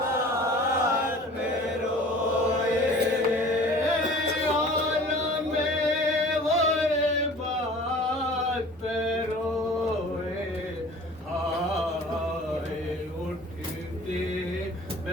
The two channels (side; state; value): both; normal; correlation 0.45